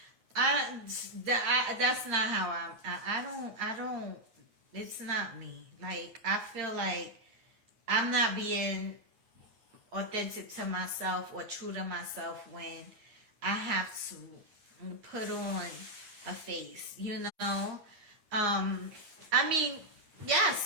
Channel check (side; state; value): left; late; 9.6 ms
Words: that's not how I don't, it's not me. Like, I feel like I'm not being authentic to myself or true to myself when I have to put on a face, I mean, yes,